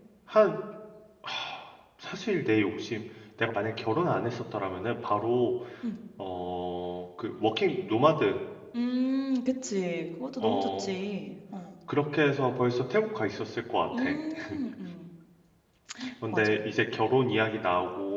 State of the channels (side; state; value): both; identical; correlation 1.00